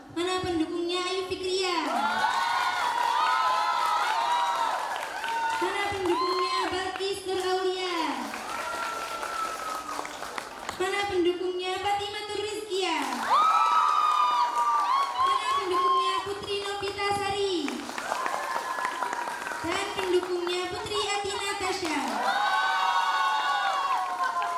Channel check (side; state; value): both; identical; correlation 1.00